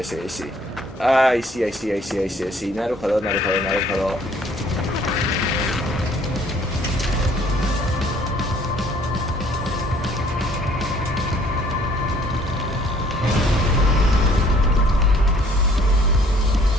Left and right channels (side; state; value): both; normal; correlation 0.59